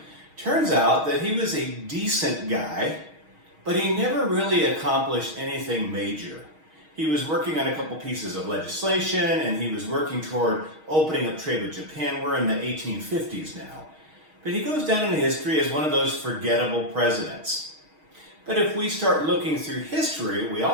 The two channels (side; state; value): left; late; 6.4 ms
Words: Turns out that he was a decent guy, but he never really accomplished anything major. He was working on a couple pieces of legislation, and he was working toward opening up trade with Japan. We're in the 1850s now. But he goes down in history as one of those forgettable presidents. But if we start looking through history, we